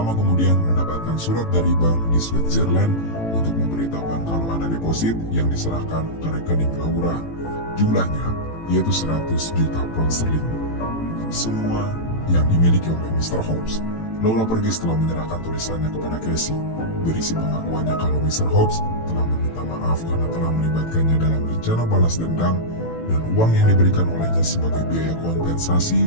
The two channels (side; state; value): right; late; 18 ms